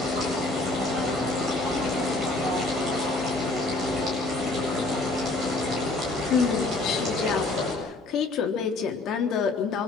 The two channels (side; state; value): right; quieter; 3.1 dB